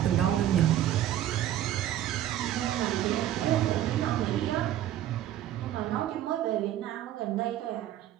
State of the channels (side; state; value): left; quieter; 12.2 dB